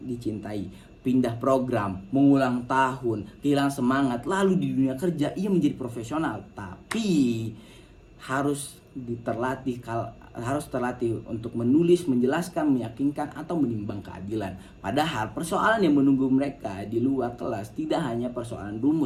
pindah program, mengulang tahun, kehilangan semangat. Lalu di dunia kerja ia menjadi profesional, tapi harus terlatih untuk menulis, menjelaskan, meyakinkan, atau menimbang keadilan. Padahal persoalan yang menunggu mereka di luar kelas tidak hanya persoalan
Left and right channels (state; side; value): identical; both; correlation 1.00